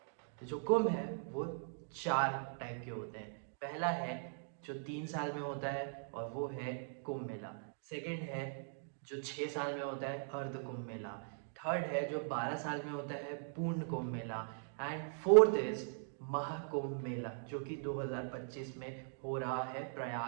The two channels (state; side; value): silent; left; digital silence